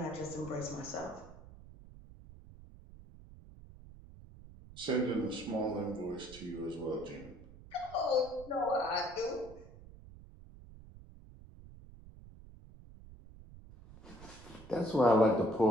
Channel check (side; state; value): right; noise; rumble, 18 dB below the sound